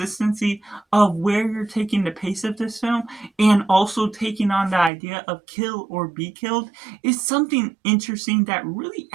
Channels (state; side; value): drops out; left; at 4.9 s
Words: of where you're taking the pace of this film and also taking on the idea of kill or be killed is something interesting that really